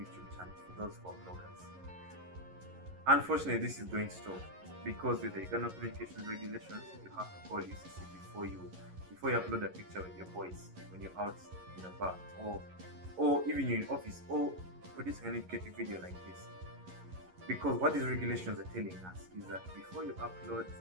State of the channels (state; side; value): late; left; 11 ms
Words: channel, for those who are bloggers. Unfortunately, this is going to stop because with the Uganda Communications Regulations, you have to call UCC before you upload a picture with your voice when you're out in a bar or even you're in office or produce an educative video like this. Because what these regulations are telling us is that before you upload